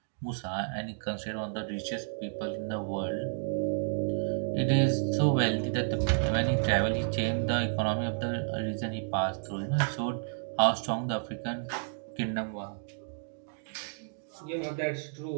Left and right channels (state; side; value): silent; left; digital silence